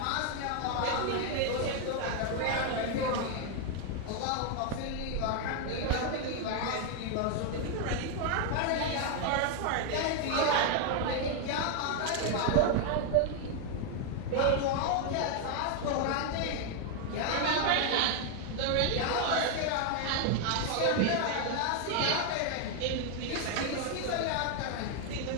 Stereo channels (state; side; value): different; both; correlation 0.01